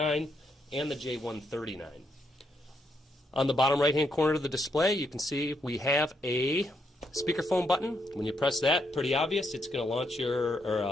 and the J139. On the bottom right-hand corner of the display, you can see we have a speakerphone button. When you press that, pretty obvious, it's going to launch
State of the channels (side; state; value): both; normal; correlation 0.78